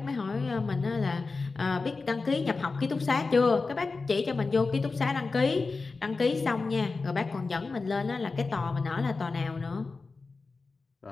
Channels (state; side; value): quieter; right; 4.0 dB